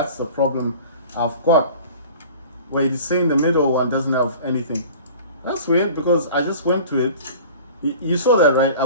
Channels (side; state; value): both; inverted; correlation -0.43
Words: the problem I've got. Where it's saying the middle one doesn't have anything. That's weird because I just went to it. You saw that, right? I